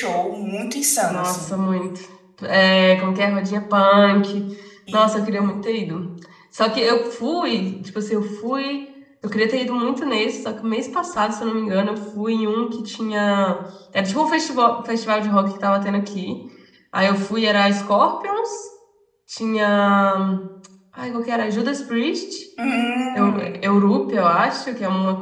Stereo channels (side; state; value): both; identical; correlation 1.00